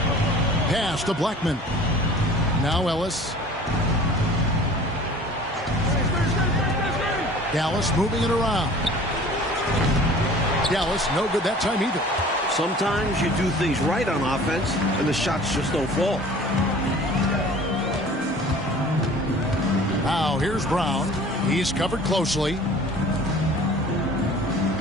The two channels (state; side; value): normal; both; correlation 0.46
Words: Pass to Blackman. Now Ellis. Dallas moving it around. Dallas no good that time either. Sometimes you do things right on offense, and the shots just don't fall. Now here's Brown. He's covered closely.